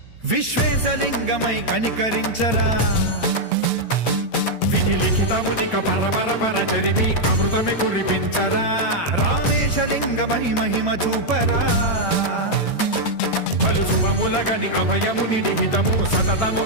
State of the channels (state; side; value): late; right; 8.7 ms